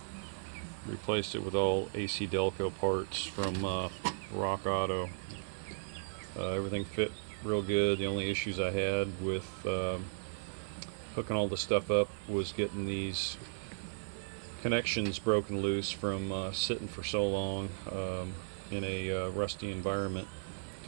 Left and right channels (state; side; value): silent; left; 54 dB below the other